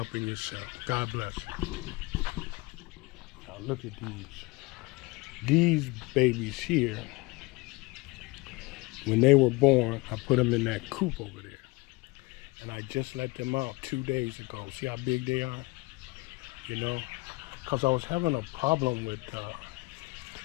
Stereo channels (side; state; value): right; quieter; 23.8 dB